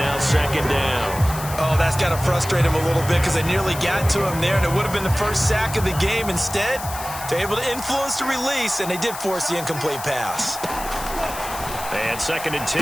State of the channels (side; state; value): left; noise; hiss, 11 dB below the sound